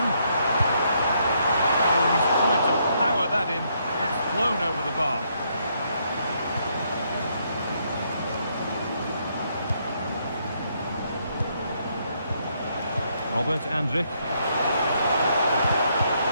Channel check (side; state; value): both; inverted; correlation -0.74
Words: Oh, he's tried to power that in. It's flown over the bar. Robert Andrich.